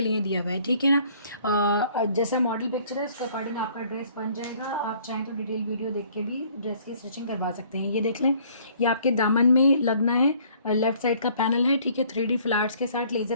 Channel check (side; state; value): both; inverted; correlation -0.58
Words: लिए दिया हुआ है, ठीक है ना। जैसा मॉडल पिक्चर है उसके अकॉर्डिंग आपका ड्रेस बन जाएगा। आप चाहें तो डिटेल वीडियो देख के भी ड्रेस की स्टिचिंग करवा सकते हैं। ये देख लें, ये आपके दामन में लगना है, लेफ्ट साइड का पैनल है, ठीक है। 3D फ्लावर्स के साथ